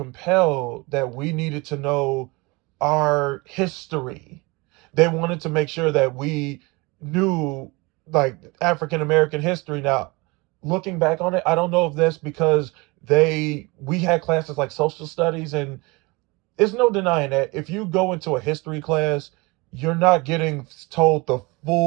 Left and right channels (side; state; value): left; quieter; 25.5 dB